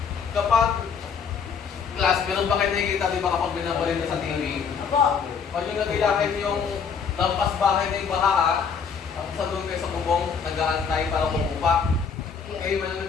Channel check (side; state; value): right; quieter; 6.3 dB